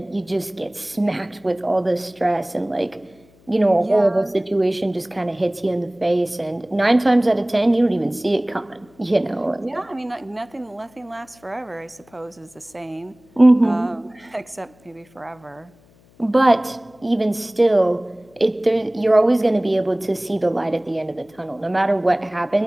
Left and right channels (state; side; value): noise; left; hum, 30 dB below the sound